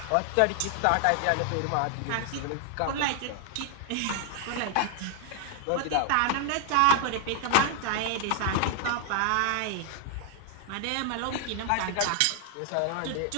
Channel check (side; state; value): both; different; correlation 0.00